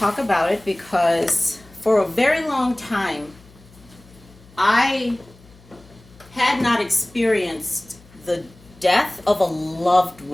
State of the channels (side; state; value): left; noise; hum, 25 dB below the sound